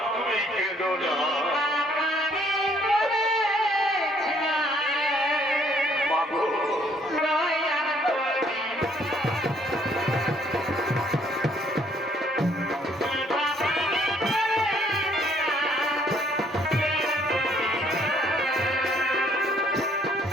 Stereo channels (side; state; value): both; normal; correlation 0.65